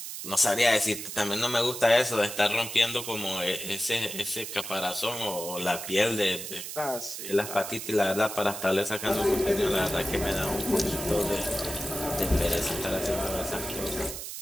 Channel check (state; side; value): noise; right; hiss, 8 dB below the sound